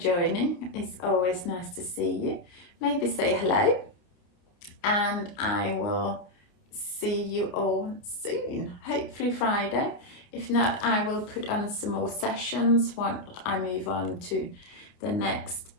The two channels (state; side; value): late; right; 29 ms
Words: It's always nice to see you. Maybe say hello, and I will see you all soon, hopefully Friday. If not, I will put on some more sessions once I move on to the next